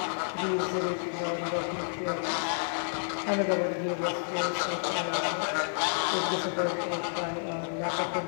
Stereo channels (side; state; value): right; silent; 58 dB below the other